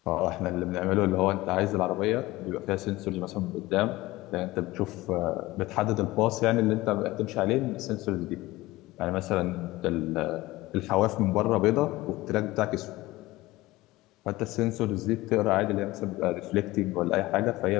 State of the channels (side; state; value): right; quieter; 19.1 dB